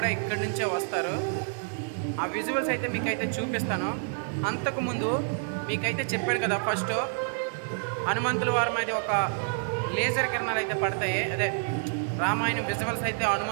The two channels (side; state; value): left; silent; digital silence